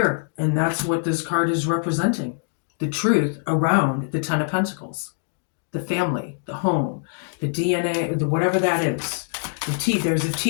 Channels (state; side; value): silent; right; digital silence